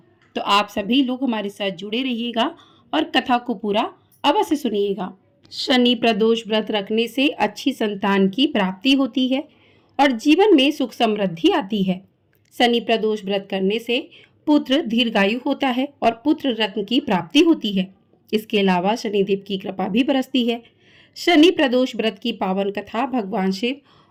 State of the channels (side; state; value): both; identical; correlation 1.00